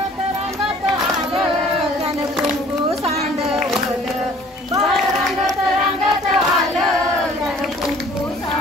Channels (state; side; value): normal; both; correlation 0.53